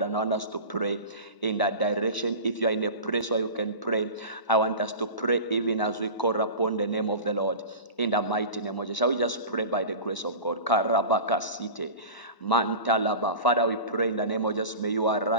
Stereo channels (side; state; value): right; late; 1.0 ms